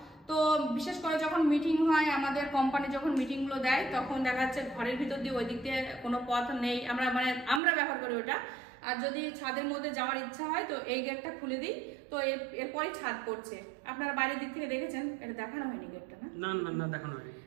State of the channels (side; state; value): left; drops out; at 7.6 s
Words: তো বিশেষ করে যখন মিটিং হয়, আমাদের কোম্পানি যখন মিটিংগুলো দেয়, তখন দেখা যাচ্ছে ঘরের ভিতর দিয়ে ওই দিক দিয়ে কোনো পথ নেই, আমরা ব্যবহার করি ওটা। আর যদি ছাদের মধ্যে যাওয়ার ইচ্ছা হয় তো এই গেটটা খুলে দিই, তো এরপরই ছাদ পড়ছে। আপনারা বাইরের দিক থেকে দেখেছেন, এটা দেখানো হয়নি গেটটা, না না না দেখানো হয়নি।